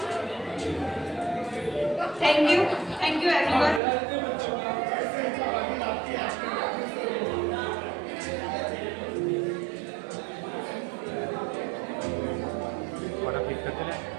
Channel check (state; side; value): drops out; left; at 3.8 s